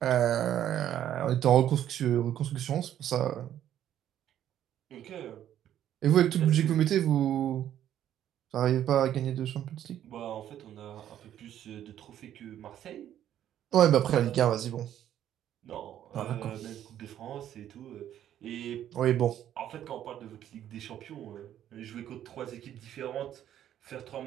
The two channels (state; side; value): quieter; left; 11.1 dB